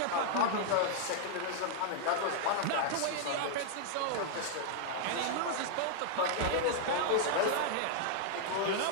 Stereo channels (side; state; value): both; different; correlation -0.01